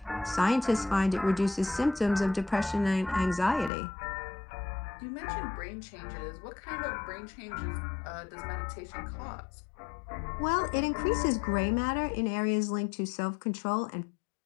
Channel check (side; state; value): right; drops out; at 3.7 s